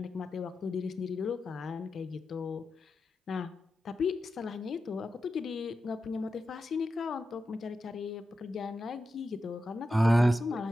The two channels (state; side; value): normal; both; correlation 0.90